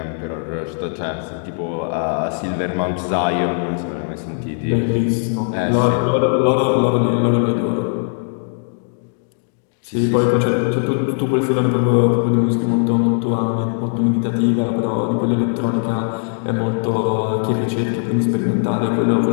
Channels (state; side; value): silent; right; 66 dB below the other